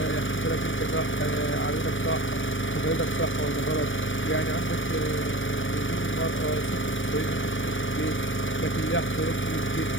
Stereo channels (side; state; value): right; late; 0.56 ms